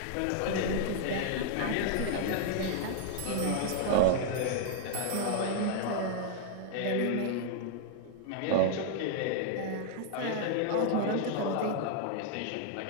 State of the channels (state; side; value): different; both; correlation -0.01